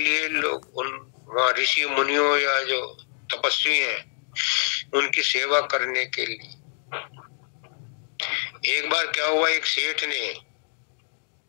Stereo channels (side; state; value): right; silent; digital silence